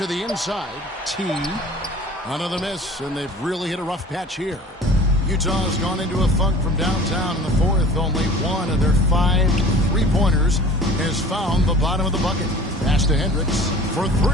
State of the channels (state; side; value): normal; both; correlation 0.44